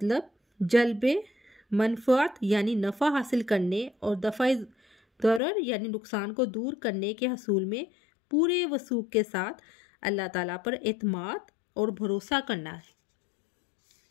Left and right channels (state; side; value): drops out; right; at 5.4 s